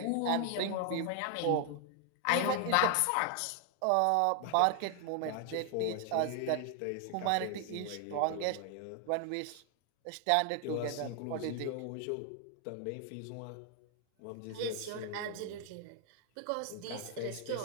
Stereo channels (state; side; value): different; both; correlation 0.00